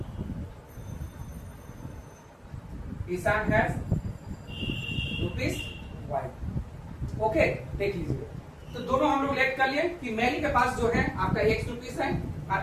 हैज ₹Y। ओके, देख लीजिए, तो दोनों हम लोग लेट कर लिए कि मेरी के पास जो है आपका ₹X है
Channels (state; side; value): identical; both; correlation 1.00